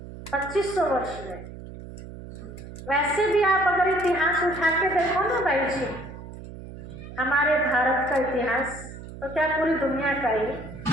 2500 वर्ष में। वैसे भी आप अगर इतिहास उठा के देखो ना भाई जी, हमारे भारत का इतिहास तो क्या पूरी दुनिया का ही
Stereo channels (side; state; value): right; noise; hum, 13 dB below the sound